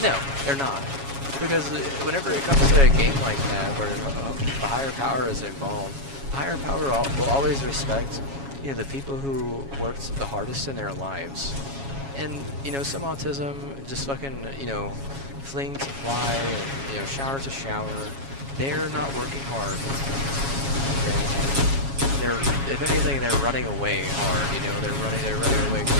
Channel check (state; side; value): late; left; 7.3 ms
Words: No, they're not. Because whenever it comes to a game like that, where a higher power is involved, a higher power will always respect, you know, the people who worked the hardest in their lives. And, you know, some autism just fucking, you know, fling to fly and, you know, shower to shower. They're not working hard, okay? They're, if anything, they're running away hard, you know? They're running away